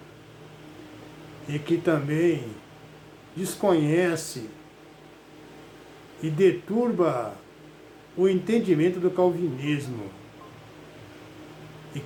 e que também desconhece e deturba o entendimento do calvinismo, e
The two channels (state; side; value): identical; both; correlation 1.00